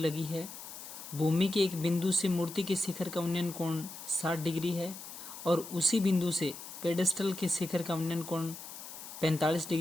है। भूमि के एक बिंदु से मूर्ति के शिखर का उन्नयन कोण 60 डिग्री है और उसी बिंदु से पेडेस्टल के शिखर का उन्नयन कोण 45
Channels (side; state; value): left; noise; hiss, 12 dB below the sound